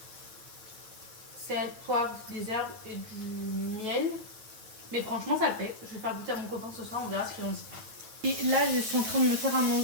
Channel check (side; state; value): left; late; 9.2 ms